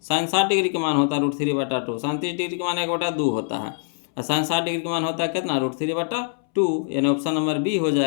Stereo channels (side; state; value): right; silent; 63 dB below the other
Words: साइन 60 डिग्री का मान होता है √3/2। साइन 30 डिग्री का मान 1/2 होता है। और साइन 60 डिग्री का मान होता है कितना? √3/2, यानी ऑप्शन नंबर बी हो